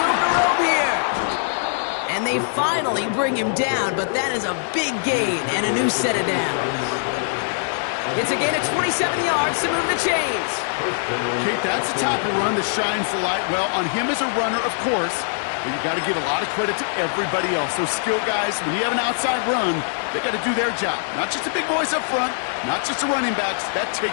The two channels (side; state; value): right; silent; digital silence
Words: to roam here. And they finally bring him down, but that is a big gain and a new set of downs. It's a gain of 27 yards to move the chains. Kate, that's the type of run that shines the light well on him as a runner, of course, but you got to give a lot of credit to everybody else. Those skill guys, when you have an outside run, they got to do their job. Not just the big boys up front, not just the running backs. That